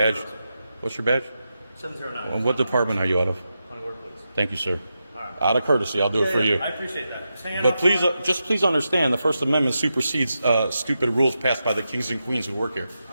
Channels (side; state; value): both; inverted; correlation -0.88